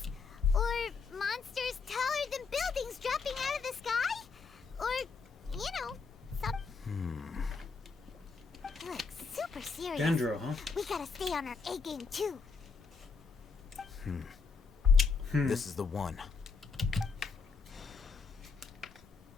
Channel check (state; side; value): quieter; right; 4.9 dB